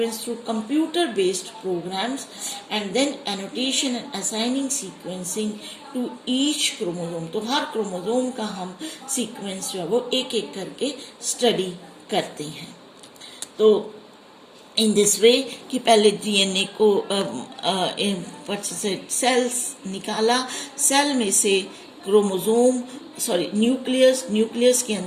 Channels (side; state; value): both; identical; correlation 1.00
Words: through computer-based programs, and then annotation and assigning sequencing to each chromosome. तो हर chromosome का हम sequence जो है वो एक एक करके study करते हैं। तो इन दिस वे कि पहले डीएनए को सेल्स निकाला, सेल में से क्रोमोसोम न्यूक्लियस के